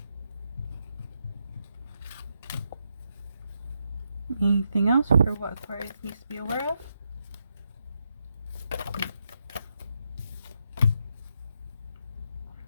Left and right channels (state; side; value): inverted; both; correlation -0.82